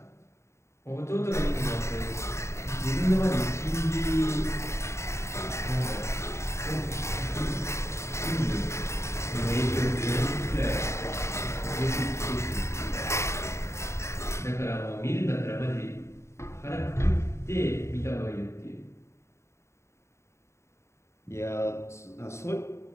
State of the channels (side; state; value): right; late; 0.13 ms